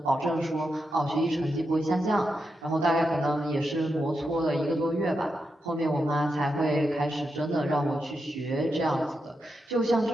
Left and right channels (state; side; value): normal; both; correlation 0.86